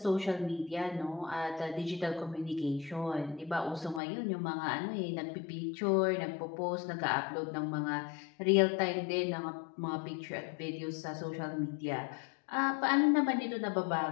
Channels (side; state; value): right; drops out; at 4.0 s